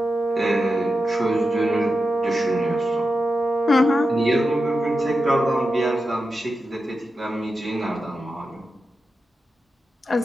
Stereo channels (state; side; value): normal; both; correlation 0.90